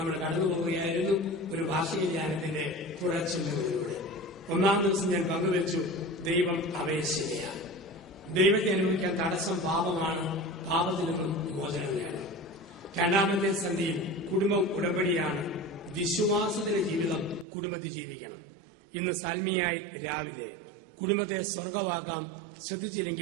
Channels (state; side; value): drops out; left; at 17.4 s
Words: കടന്നുപോവുകയായിരുന്നു. ഒരു ഭാഷവിജ്ഞാനത്തിന്റെ തുടർച്ചിന്തകളിലൂടെ 1-ാം ദിവസം ഞാൻ പങ്കുവച്ചു, ദൈവം അപേക്ഷയാണ്. ദൈവത്തെ അനുഭവിക്കാൻ തടസ്സം പാപമാണ്. പാപത്തിൽ നിന്നും മോചനം നേടണം. 2-ാമത്തെ സന്ധിയിൽ കുടുംബം ഉടമ്പടിയാണ്. വിശ്വാസത്തിന്റെ ജീവിതം കുടുംബത്തിൽ ജീവിക്കണം. ഇന്ന് സന്ധിയായി രാവിലെ കുടുംബത്തെ സ്വർഗമാക്കാം,